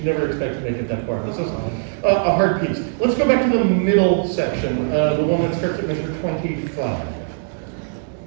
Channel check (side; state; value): left; silent; 63 dB below the other